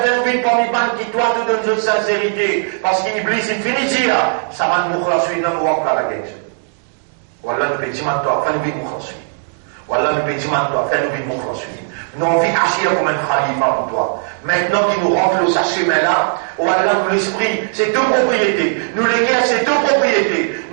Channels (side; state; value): left; silent; digital silence